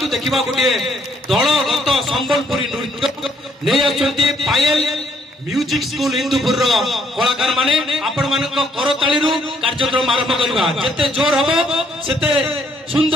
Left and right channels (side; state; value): both; normal; correlation 0.68